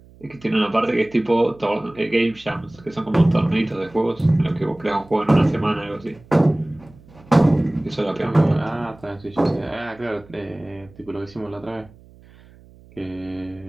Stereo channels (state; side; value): noise; right; hum, 24 dB below the sound